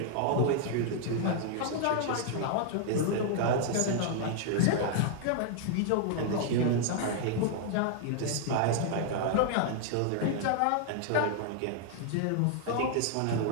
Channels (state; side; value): different; both; correlation 0.00